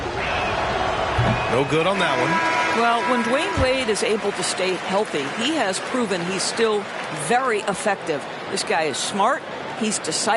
No good on that one. Well, when Dwayne Wade is able to stay healthy, he has proven he's still very effective. This guy is smart, he's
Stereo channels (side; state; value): both; identical; correlation 1.00